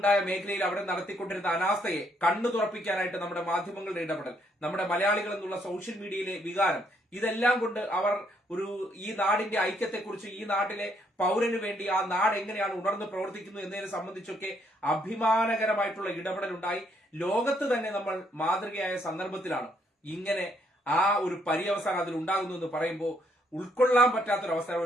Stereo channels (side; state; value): both; normal; correlation 0.71